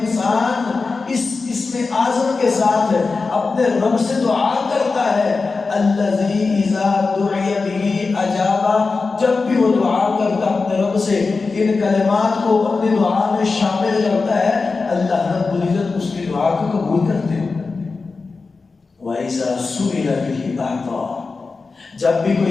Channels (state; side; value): quieter; right; 4.2 dB